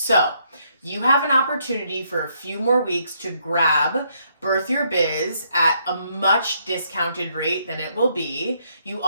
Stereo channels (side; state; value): both; inverted; correlation -0.73